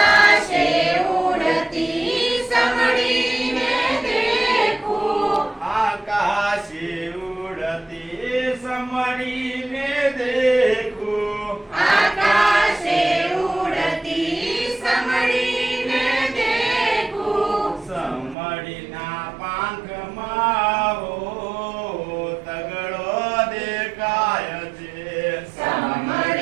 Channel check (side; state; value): left; drops out; at 18.4 s